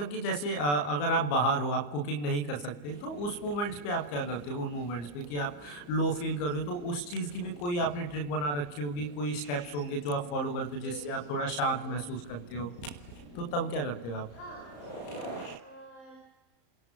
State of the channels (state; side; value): late; right; 34 ms